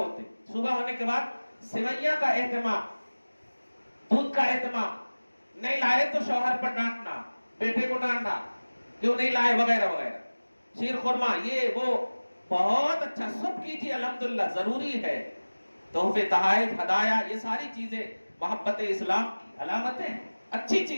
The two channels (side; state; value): both; inverted; correlation -1.00